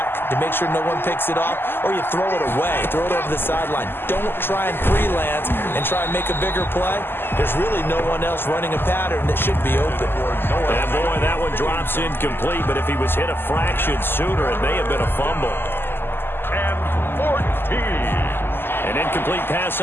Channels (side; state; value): right; late; 0.10 ms